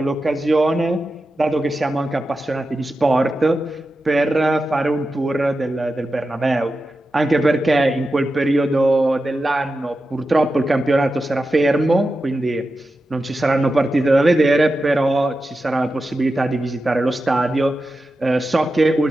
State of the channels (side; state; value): both; normal; correlation 0.91